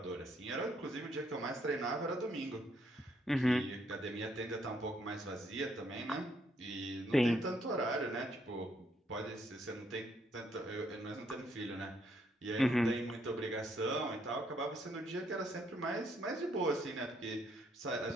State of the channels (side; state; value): both; normal; correlation 0.72